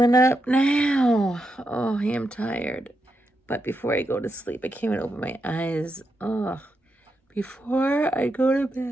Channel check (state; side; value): normal; both; correlation 0.85